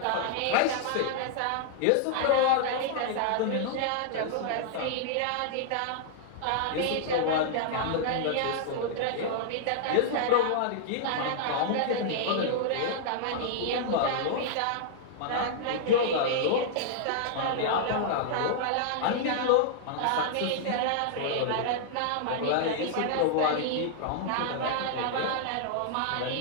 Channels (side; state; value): both; different; correlation -0.01